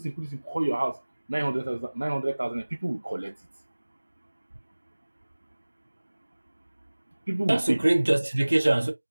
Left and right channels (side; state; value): both; inverted; correlation -1.00